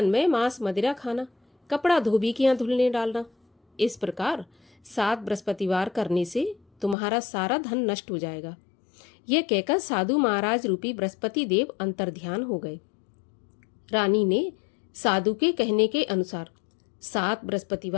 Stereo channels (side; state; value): right; drops out; at 7.0 s